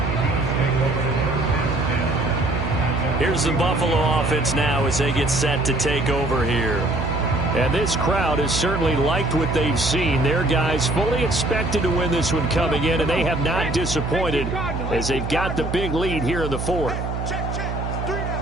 Here's the Buffalo offense now as they get set to take over here. And this crowd has certainly liked what they've seen. Their guys fully expected to win this one coming in, and they have not disappointed as they've got the big lead here in the fourth.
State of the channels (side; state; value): right; noise; hum, 4 dB below the sound